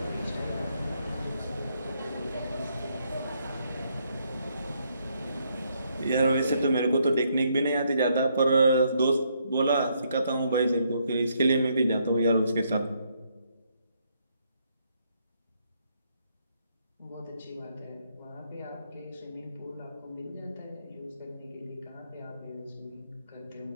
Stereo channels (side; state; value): both; inverted; correlation -0.74